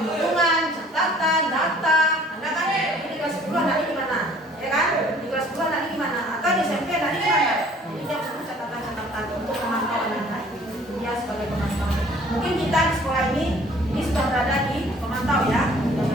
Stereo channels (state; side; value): normal; both; correlation 0.54